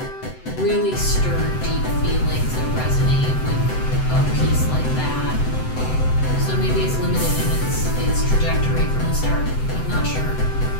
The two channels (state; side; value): late; right; 7.8 ms